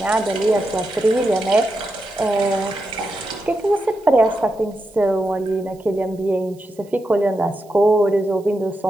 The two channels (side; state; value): right; noise; hiss, 29 dB below the sound